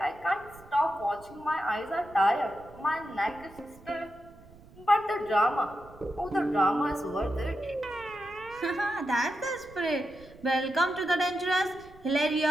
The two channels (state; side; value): noise; right; rumble, 22 dB below the sound